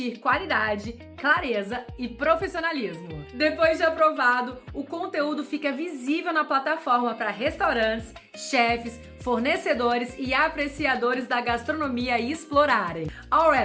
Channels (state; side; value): identical; both; correlation 1.00